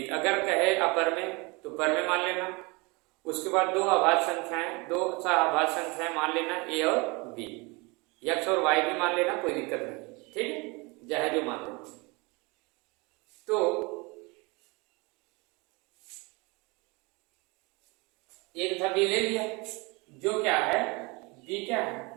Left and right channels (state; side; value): quieter; left; 27.0 dB